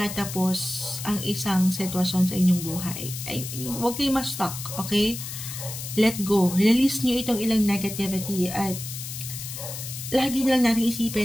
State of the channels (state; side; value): noise; left; hiss, 8 dB below the sound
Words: ang isang sitwasyon sa inyong buhay. I mean, huwag kayo ma-stuck, okay? Let go. Release nyo itong ilang negativity at lagi na lang natin